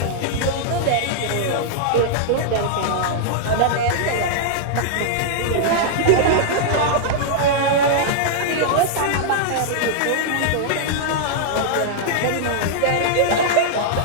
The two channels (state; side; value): different; both; correlation -0.01